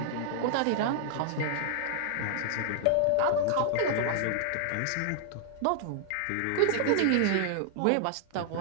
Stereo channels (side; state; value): both; different; correlation -0.01